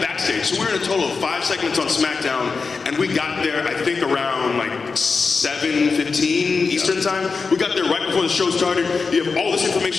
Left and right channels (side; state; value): right; quieter; 4.7 dB